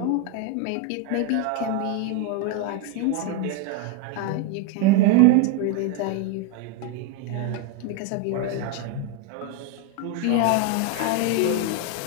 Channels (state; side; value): different; both; correlation 0.01